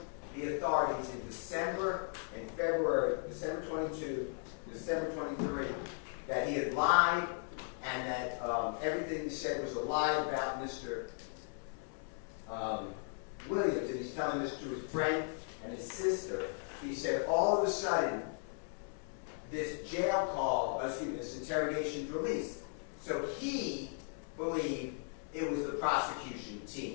the authorities in December and February, December 22, December 23, that he had lied and that everything he said was a lie about Mr. Williams, and he's telling this to his friend and his sister. He said all of a sudden this interrogation released. So he believed it was the prosecution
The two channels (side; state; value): right; silent; 53 dB below the other